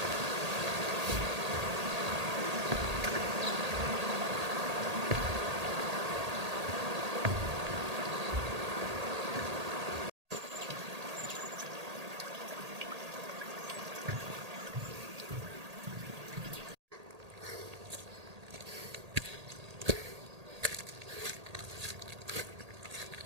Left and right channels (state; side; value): late; left; 1.8 ms